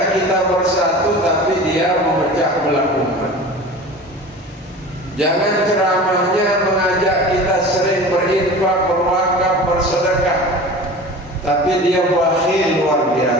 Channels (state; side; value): normal; both; correlation 0.36